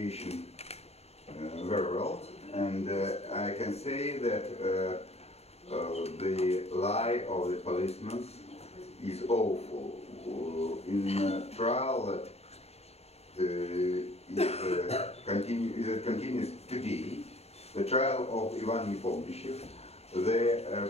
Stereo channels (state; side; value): late; right; 0.30 ms